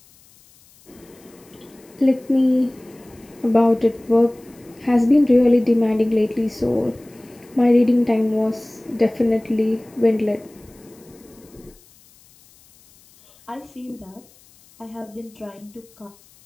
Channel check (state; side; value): noise; left; hiss, 28 dB below the sound